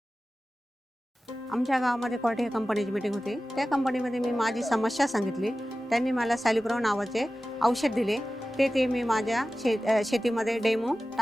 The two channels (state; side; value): normal; both; correlation 0.95